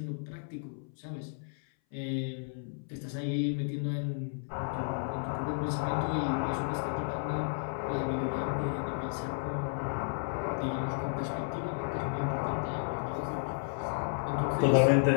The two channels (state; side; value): silent; right; 56 dB below the other